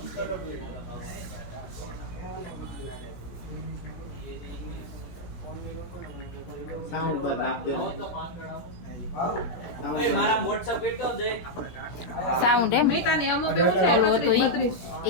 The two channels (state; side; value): late; right; 17 ms